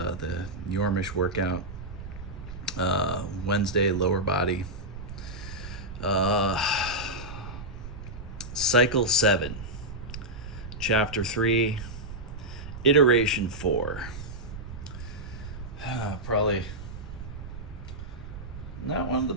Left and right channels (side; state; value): right; noise; rumble, 10 dB below the sound